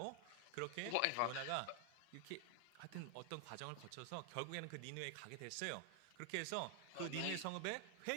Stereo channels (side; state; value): both; different; correlation 0.00